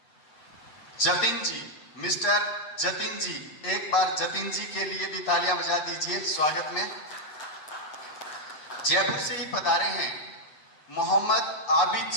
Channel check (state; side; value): late; right; 8.4 ms